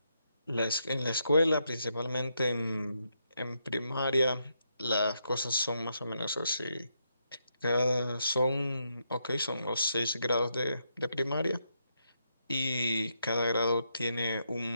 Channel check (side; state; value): both; inverted; correlation -0.80